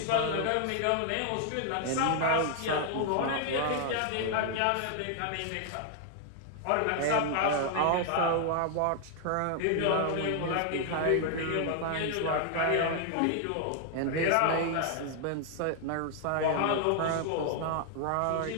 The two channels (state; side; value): different; both; correlation 0.00